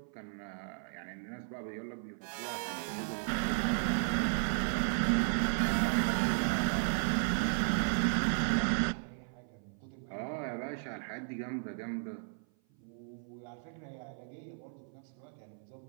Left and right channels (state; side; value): silent; left; 54 dB below the other